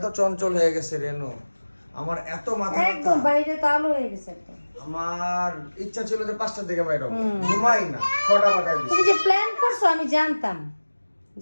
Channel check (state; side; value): inverted; both; correlation -1.00